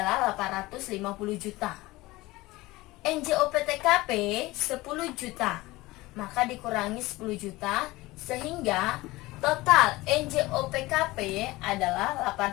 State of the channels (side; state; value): right; quieter; 19.9 dB